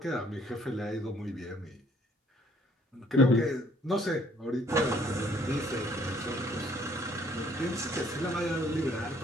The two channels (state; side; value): normal; both; correlation 0.62